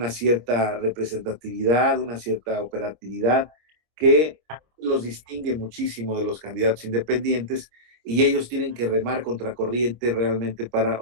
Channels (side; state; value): left; late; 25 ms